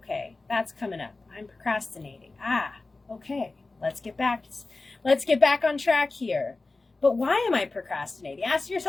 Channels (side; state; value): right; quieter; 3.4 dB